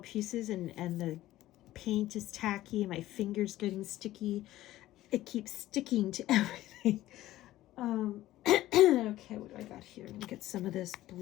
and the paint is tacky and my finger's getting sticky. It keeps sticking to everything. Okay, what do I got here? I'm gonna get some of this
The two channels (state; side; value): quieter; right; 15.2 dB